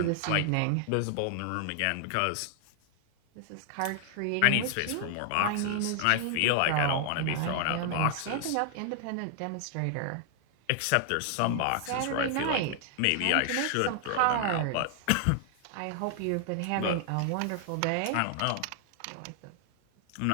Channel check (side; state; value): both; different; correlation 0.00